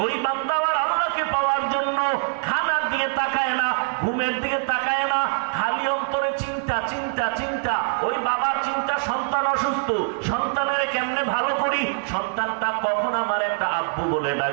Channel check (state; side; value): silent; left; 63 dB below the other